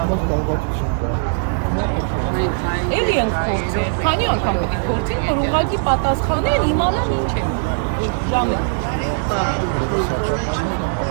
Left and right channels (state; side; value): silent; left; digital silence